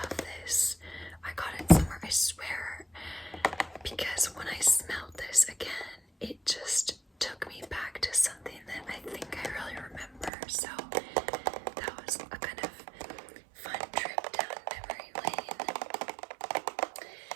this. I got it somewhere, I swear, because when I smelled this again, it just took me back to something that I think I really remember. So that was a kind of fun trip down memory lane.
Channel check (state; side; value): drops out; left; at 10.3 s